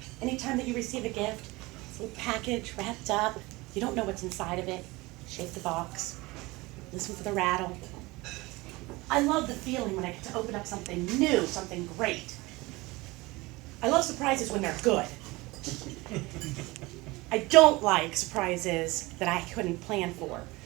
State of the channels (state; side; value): quieter; left; 22.1 dB